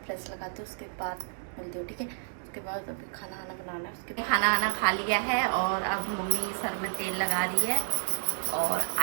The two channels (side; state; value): left; silent; digital silence